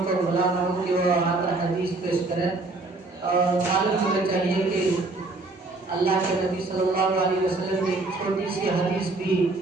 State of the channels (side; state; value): left; quieter; 3.3 dB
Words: को बुलाना हो कि वो आकर हदीस पेश करें। और मालूम होना चाहिए कि अल्लाह के नबी सल्लल्लाहु अलैहि वसल्लम की छोटी सी हदीस भी